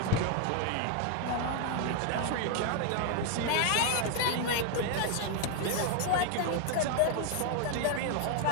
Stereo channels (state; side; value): different; both; correlation 0.00